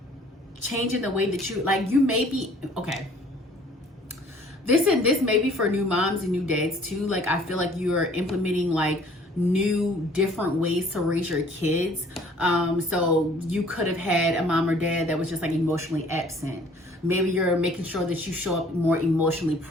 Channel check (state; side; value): normal; both; correlation 0.55